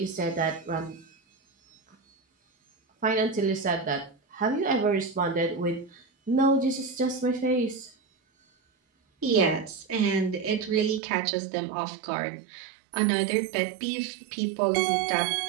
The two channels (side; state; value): left; drops out; at 11.0 s